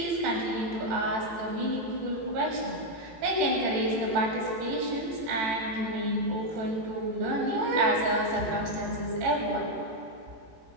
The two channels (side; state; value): left; late; 18 ms